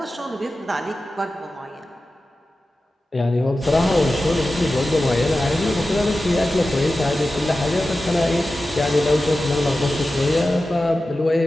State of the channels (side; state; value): both; normal; correlation 0.94